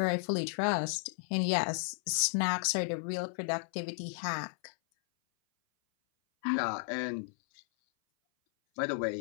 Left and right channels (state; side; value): silent; right; 56 dB below the other